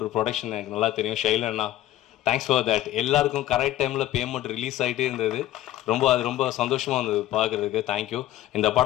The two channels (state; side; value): quieter; right; 14.2 dB